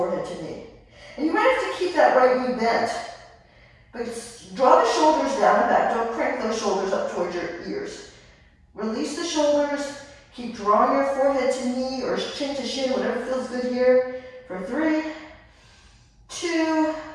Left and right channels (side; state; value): both; identical; correlation 1.00